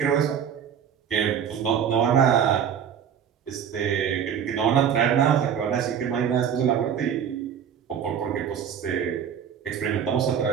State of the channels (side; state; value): left; quieter; 8.3 dB